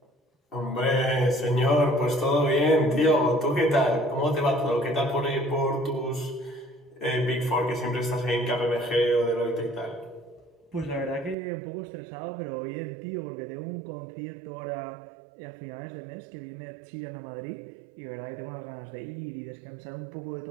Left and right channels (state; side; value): drops out; left; at 11.4 s